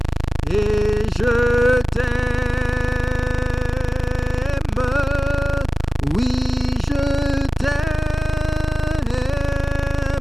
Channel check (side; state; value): both; normal; correlation 0.97